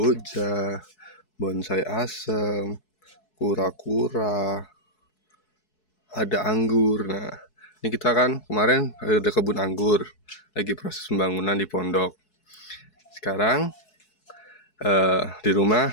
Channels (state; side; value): late; right; 4.7 ms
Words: bonsai asem, kura-kura, ada anggur. Nah, ini kita kan kemarin ada kebun anggur, lagi proses pembangunan di pondok. Sekarang di